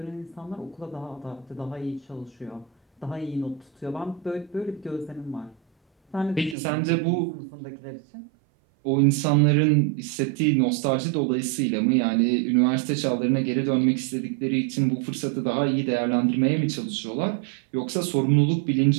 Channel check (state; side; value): drops out; left; at 6.6 s